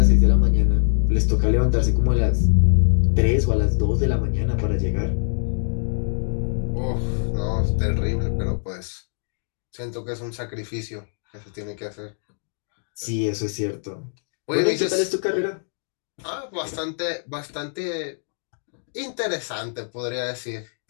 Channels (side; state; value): right; silent; digital silence